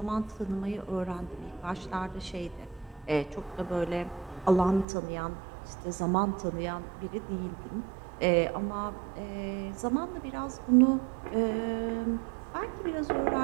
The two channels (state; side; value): drops out; left; at 4.9 s